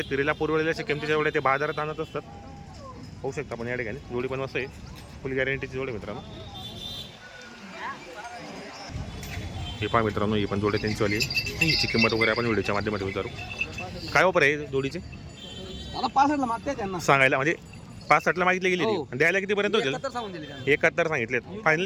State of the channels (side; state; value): both; identical; correlation 1.00